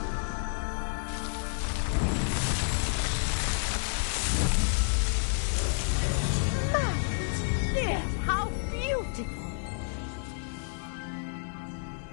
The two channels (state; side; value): silent; right; 57 dB below the other